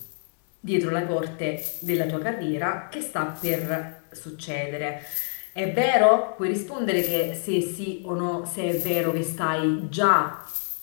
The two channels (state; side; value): silent; right; digital silence